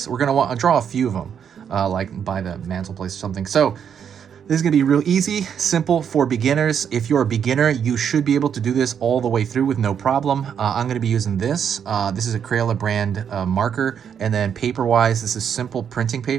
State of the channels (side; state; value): left; quieter; 8.0 dB